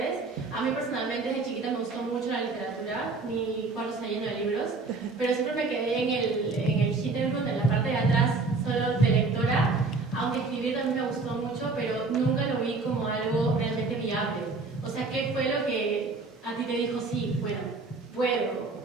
A mí personalmente desde chiquita me gustó mucho la literatura, mi cuarto está lleno de libros, pero siempre me quedé en el Hintergrund, en la parte de atrás, solo de lectora, aunque escribir también me gustó mucho, pero nunca lo vi como algo realmente viable. O sea, ¿qué fue lo que a ti te dijo, sí, bueno, puedo?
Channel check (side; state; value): left; quieter; 3.9 dB